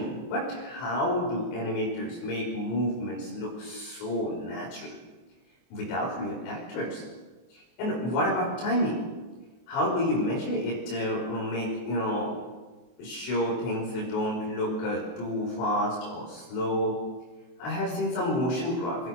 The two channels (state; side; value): late; right; 23 ms